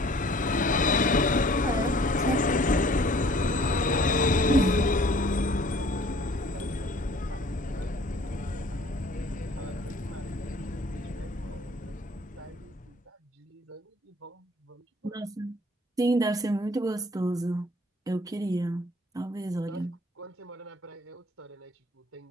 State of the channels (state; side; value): normal; both; correlation 0.54